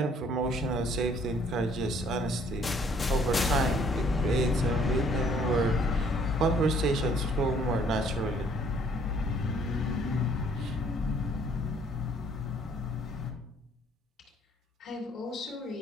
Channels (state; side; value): normal; both; correlation 0.61